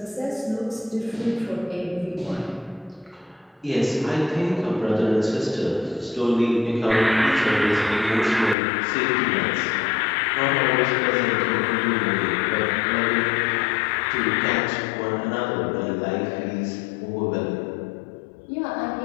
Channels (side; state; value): right; drops out; at 8.6 s